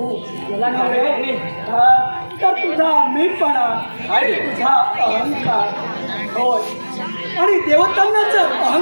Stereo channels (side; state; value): both; inverted; correlation -1.00